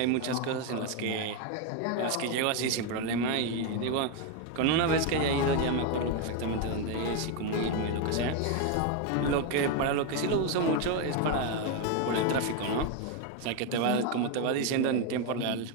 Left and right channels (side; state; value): both; different; correlation 0.02